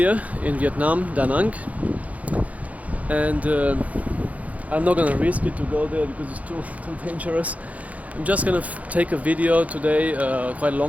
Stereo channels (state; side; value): late; left; 0.069 ms